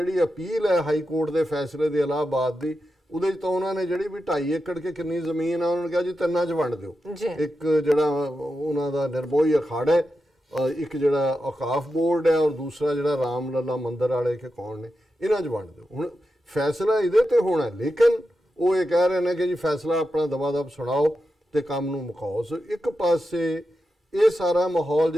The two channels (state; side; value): normal; both; correlation 0.89